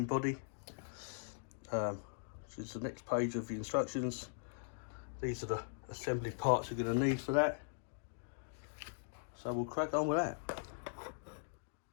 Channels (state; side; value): silent; right; digital silence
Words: body. Which is the next page of the instructions. These are the assembly parts you're going to need for that. So we'll crack on with that.